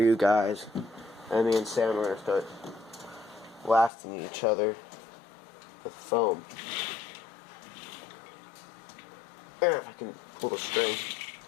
guys. And me and Sam are going to start blasting each other with foam. And if I can pull the string,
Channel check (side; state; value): right; drops out; at 3.9 s